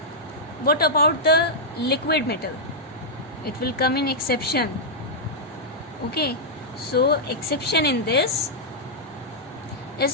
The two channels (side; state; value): both; normal; correlation -0.08